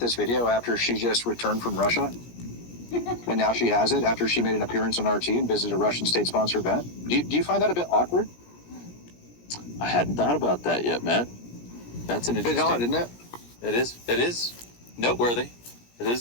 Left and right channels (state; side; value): late; right; 17 ms